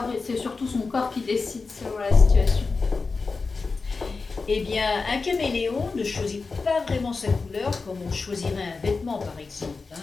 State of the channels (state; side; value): quieter; right; 4.3 dB